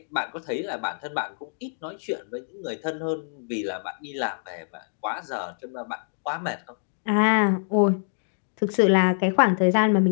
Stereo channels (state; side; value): silent; right; digital silence